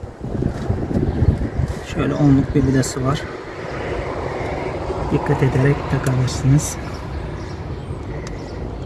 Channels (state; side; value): identical; both; correlation 1.00